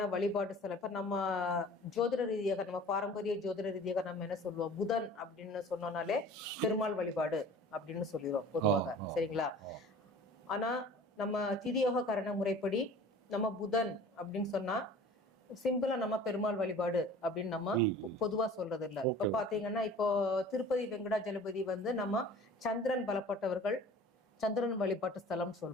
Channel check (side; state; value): both; normal; correlation 0.44